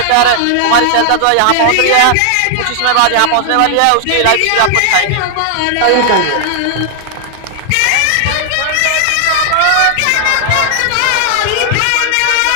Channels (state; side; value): different; both; correlation 0.00